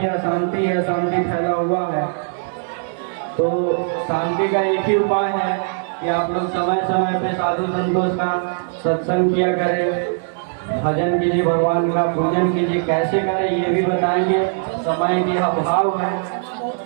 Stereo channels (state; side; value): silent; left; digital silence